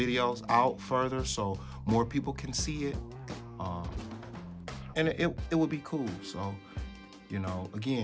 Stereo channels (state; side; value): identical; both; correlation 1.00